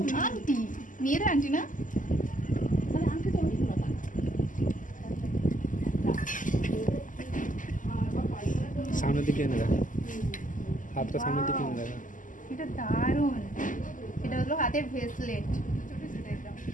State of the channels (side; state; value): right; late; 0.38 ms